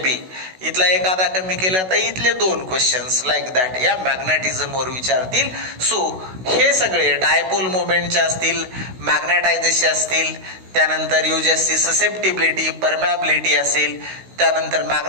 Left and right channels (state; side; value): late; left; 16 ms